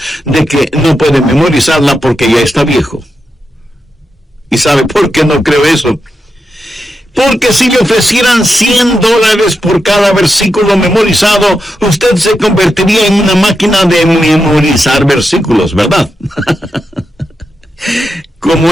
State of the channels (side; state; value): both; normal; correlation 0.87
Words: de que no puede memorizarla porque ya está viejo. ¿Y sabe por qué no creo eso? Porque si le ofrecieran $100 por cada versículo memorizado, usted se convertiría en una máquina de memorizar versículos, ¿verdad? Como